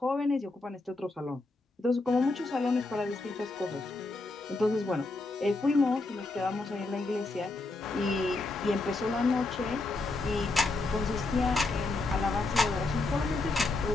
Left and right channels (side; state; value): right; quieter; 3.2 dB